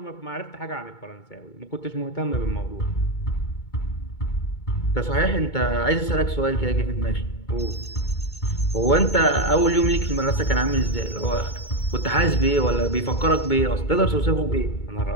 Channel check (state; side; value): late; right; 2.2 ms